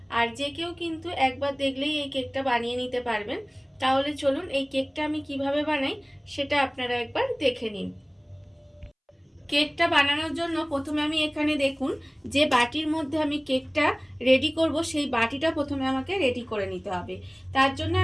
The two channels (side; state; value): both; identical; correlation 1.00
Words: আর যে কেউ কিন্তু একবার দেখলেই এই কেকটা বানিয়ে নিতে পারবেন। তাহলে চলুন এই কেকটা আমি কিভাবে বানাই সেটা আপনারা একবার দেখে নিন। কেকটা বানানোর জন্য প্রথমে আমি এখানে দেখুন যে বাটির মধ্যে আমি কেকটা রেডি করব, সেই বাটিটা প্রথমে আমাকে রেডি করে নিতে হবে। তার জন্য